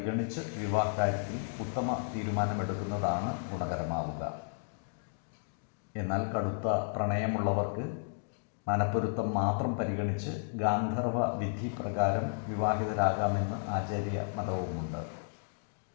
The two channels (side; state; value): right; silent; digital silence